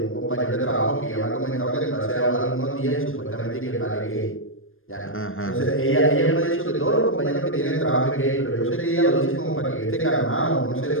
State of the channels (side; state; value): right; late; 0.60 ms